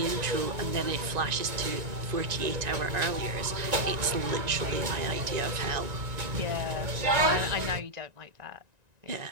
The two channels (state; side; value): late; left; 1.9 ms